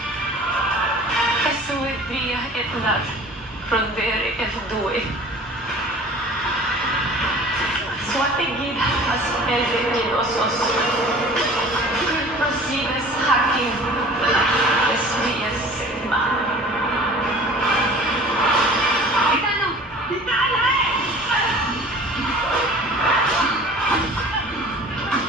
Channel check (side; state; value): both; normal; correlation 0.45